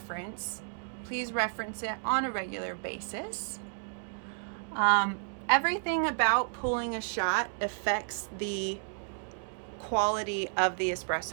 Please reference it on a regular basis. Everything about pulling a shot affects the quality of the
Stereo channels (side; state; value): left; silent; digital silence